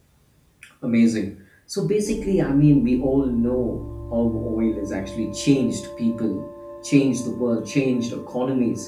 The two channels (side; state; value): both; identical; correlation 1.00